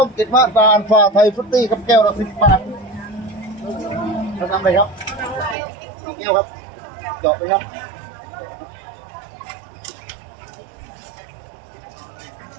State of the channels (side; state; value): left; drops out; at 5.6 s